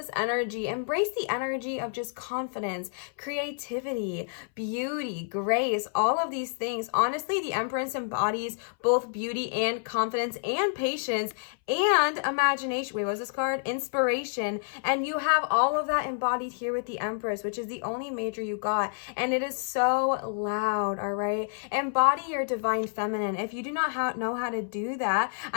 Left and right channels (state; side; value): silent; right; 59 dB below the other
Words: energy, embrace the energy of just confidence, creativity, beauty, grace, all of these things. Honestly, the Empress embodies both beauty and confidence and patience and imagination. Wait, what was this card? Inspiration. And you have all of that embodied here with the Empress, which is the only major you got. And it is so loud, all right? Embody your divine feminine. If you do not know how to do that,